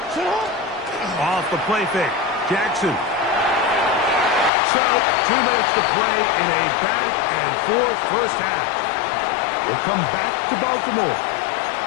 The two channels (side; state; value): right; drops out; at 4.5 s